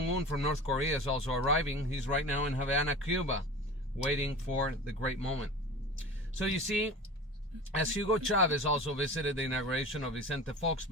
from North Korea is also arriving. He's right now in Havana, Cuba, waiting for the great moment. So you see, as Hugo Chavez also visited the inauguration of Vicente Fox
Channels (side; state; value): both; normal; correlation 0.35